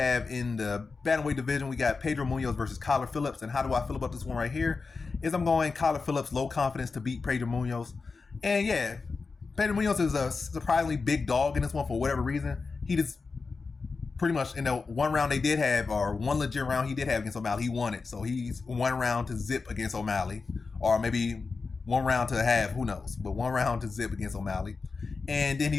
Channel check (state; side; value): quieter; right; 4.4 dB